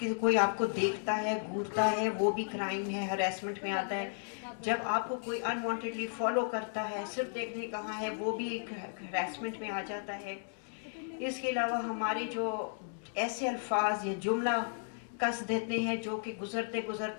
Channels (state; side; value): silent; right; 55 dB below the other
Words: کوئی آپ کو دیکھتا ہے، گھورتا ہے، وہ بھی کرائم ہے، ہراسمنٹ میں آتا ہے. جب آپ کو کوئی ان وانٹیڈلی فالو کرتا ہے، صرف دیکھنے کہاں ہے، وہ بھی ایک ہراسمنٹ میں آ جاتا ہے. اس کے علاوہ ہمارے جو ایسے الفاظ یا جملہ کس دیتے ہیں جو کہ گزرتے